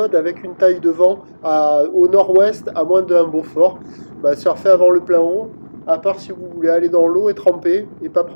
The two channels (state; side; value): inverted; both; correlation -1.00